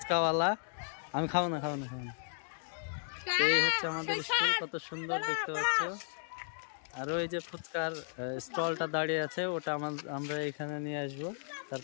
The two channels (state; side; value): silent; right; digital silence